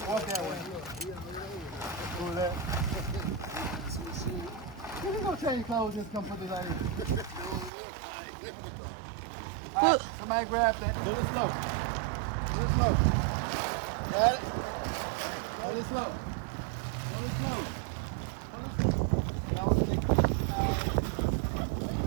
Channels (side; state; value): left; drops out; at 7.7 s